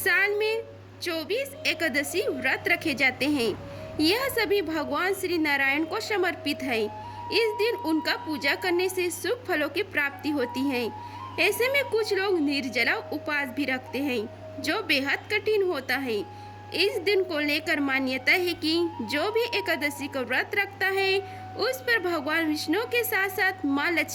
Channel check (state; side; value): identical; both; correlation 1.00